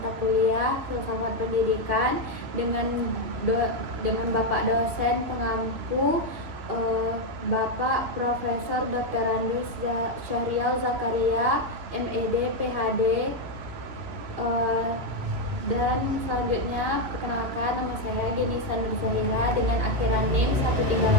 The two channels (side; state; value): left; late; 2.9 ms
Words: kuliah Filsafat Pendidikan dengan Bapak dosen pengampu Bapak Profesor Dr. Andreas Syahrial Zakaria, MED, PhD. Dan selanjutnya perkenalkan, nama saya Denisa Nurzahira dengan akhiran NIM